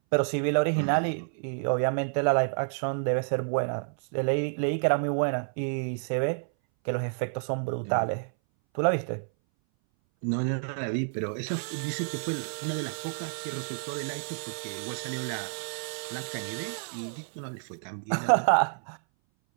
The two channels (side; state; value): left; silent; 58 dB below the other